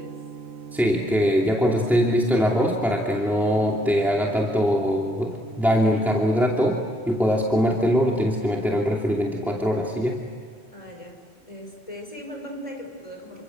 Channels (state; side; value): normal; both; correlation 0.72